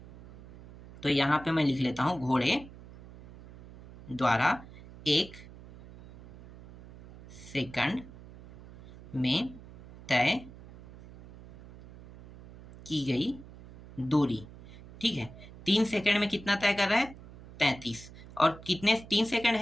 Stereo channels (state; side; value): noise; right; hum, 18 dB below the sound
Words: तो यहाँ पे मैं लिख लेता हूँ, घोड़े द्वारा 1 सेकंड में तय की गई दूरी, ठीक है। 3 सेकंड में कितना तय कर रहा है, 33, और कितने 3 सेकंड